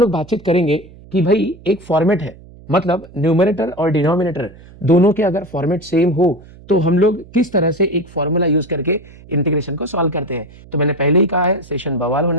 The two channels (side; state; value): right; noise; hum, 21 dB below the sound